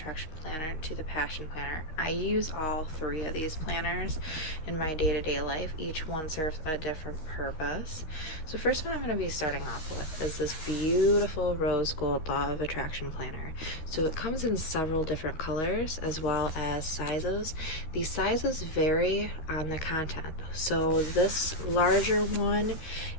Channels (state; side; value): late; right; 13 ms